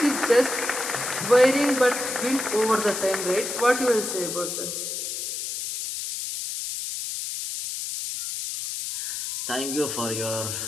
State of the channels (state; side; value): noise; left; hiss, 5 dB below the sound